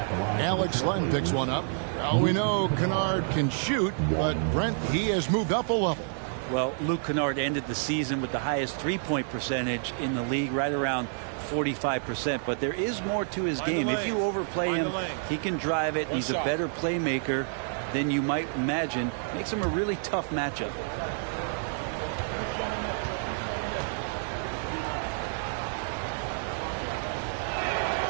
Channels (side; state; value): left; silent; 59 dB below the other